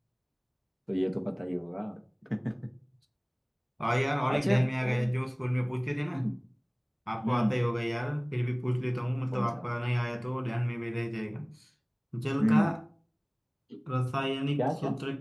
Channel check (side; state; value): both; identical; correlation 1.00